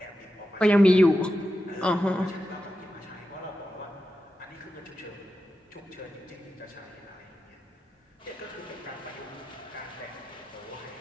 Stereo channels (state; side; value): normal; both; correlation 0.90